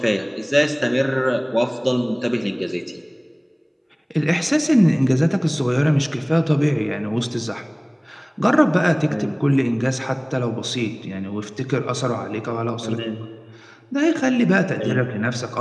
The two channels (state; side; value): identical; both; correlation 1.00